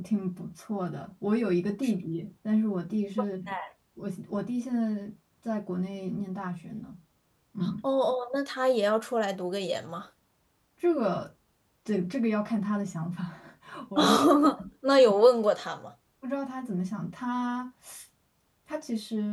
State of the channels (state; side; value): identical; both; correlation 1.00